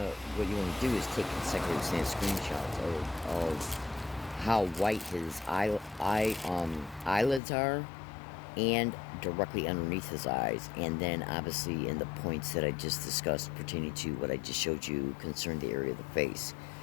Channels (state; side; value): drops out; right; at 7.4 s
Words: you want to do is take consecutive snap screenshots of how white his eyelids are, and directly underneath his eyes, and then obviously in the points that I just discussed pertaining to what I just showed you concerning the area of the face.